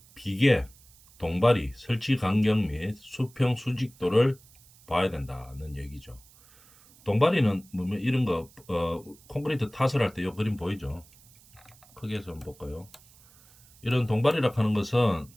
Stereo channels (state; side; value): noise; right; hiss, 26 dB below the sound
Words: 비계, 동발이, 설치 간격 및 수평 수직도를 봐야 된다는 얘기죠. 동발이는 뭐면 이런 거 콘크리트 탓을 할 때 이 그림 보이죠? 크게 해서 한번 볼까요? 이런 동발이라 하는 것은